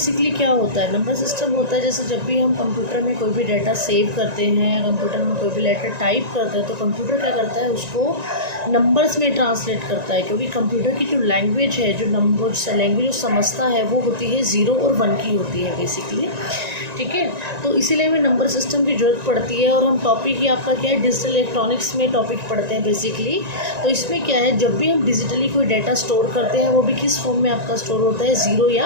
क्या होता है? नंबर सिस्टम होता है जैसे जब भी हम कंप्यूटर में कोई भी डाटा सेव करते हैं या कंप्यूटर में कोई भी लेटर टाइप करते हैं तो कंप्यूटर क्या करता है, उसको नंबर्स में ट्रांसलेट करता है। क्योंकि कंप्यूटर की जो लैंग्वेज है, जो नंबर लैंग्वेज जो समझता है वो होती है 0 और 1 की होती है बेसिकली। ठीक है, तो इसीलिए हमें नंबर सिस्टम की ज़रूरत पड़ती है। और हम टॉपिक ही आपका क्या है, डिजिटल इलेक्ट्रॉनिक्स में टॉपिक पढ़ते हैं बेसिकली। तो इसमें क्या है, जब भी हम डिजिटली कोई डाटा स्टोर करते हैं वो भी किस फॉर्म में आपका स्टोर होता है, 0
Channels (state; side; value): late; left; 1.9 ms